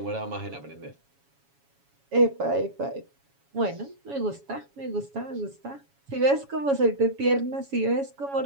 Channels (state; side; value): late; left; 7.2 ms